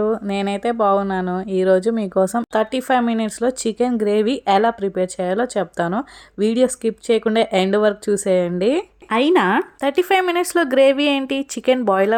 నేనైతే బాగున్నాను. ఈరోజు మీకోసం 35 మినిట్స్లో చికెన్ గ్రేవీ ఎలా ప్రిపేర్ చేయాలో చెప్తాను. వీడియో స్కిప్ చేయకుండా ఎండ్ వరకు చూసేయండి. అయినా 35 మినిట్స్లో గ్రేవీ ఏంటి, చికెన్ బాయిల్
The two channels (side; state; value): both; identical; correlation 1.00